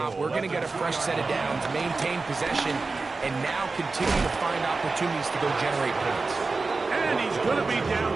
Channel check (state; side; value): quieter; left; 3.9 dB